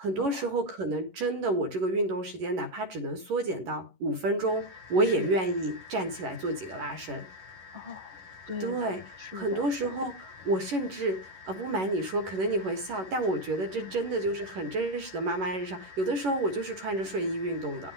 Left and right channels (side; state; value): left; late; 11 ms